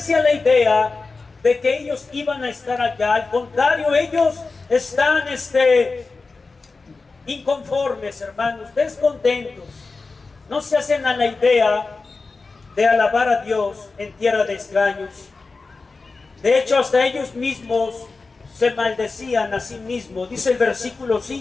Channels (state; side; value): quieter; right; 4.0 dB